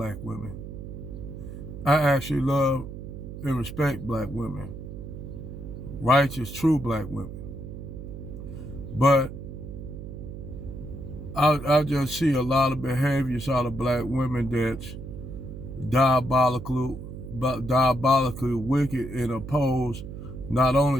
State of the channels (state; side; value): noise; right; hum, 10 dB below the sound